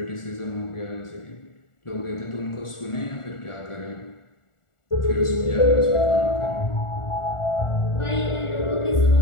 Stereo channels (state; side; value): late; right; 1.4 ms